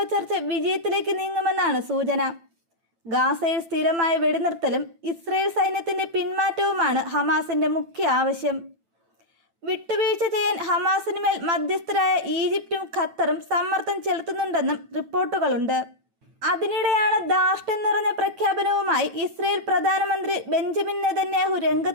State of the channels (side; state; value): left; late; 9.0 ms